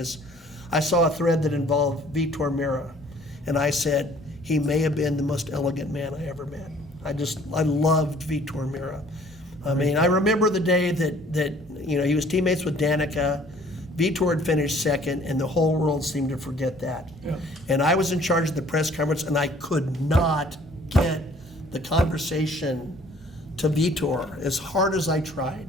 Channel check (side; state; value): both; normal; correlation 0.56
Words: I saw a thread that involved Vitor Mira, and I said, he may have been the most elegant man I ever met. I loved Vitor Mira. I mean, I remember the day that you know, he was teammates with Danica. Vitor had finished second, and the whole world seemed to forget that. Yeah. And I was in charge of the press conference, and I could not get the conversation to Vitor as hard as I